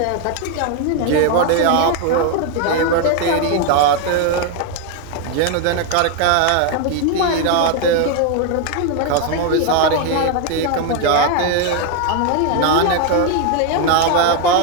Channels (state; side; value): different; both; correlation 0.01